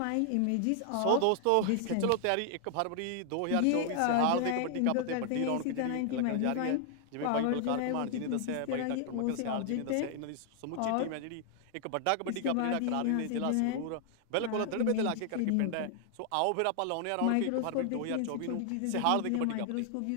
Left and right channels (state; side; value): different; both; correlation 0.00